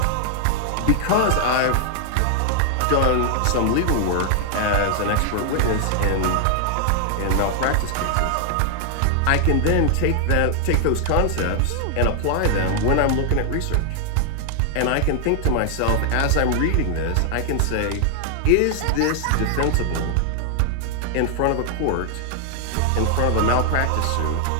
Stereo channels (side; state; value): both; different; correlation 0.00